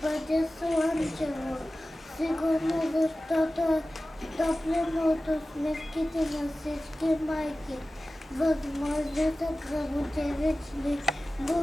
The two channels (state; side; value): normal; both; correlation 0.95